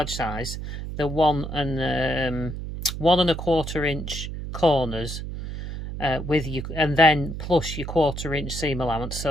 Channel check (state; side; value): noise; right; hum, 7 dB below the sound